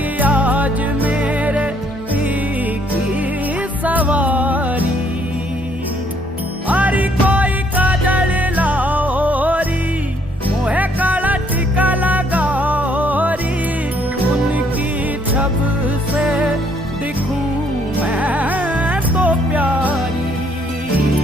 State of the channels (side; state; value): both; normal; correlation 0.67